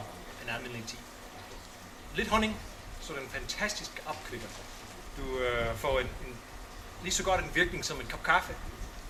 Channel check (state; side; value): identical; both; correlation 1.00